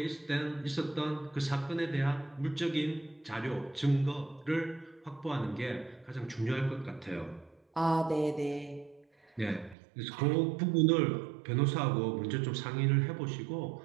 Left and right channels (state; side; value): drops out; left; at 9.8 s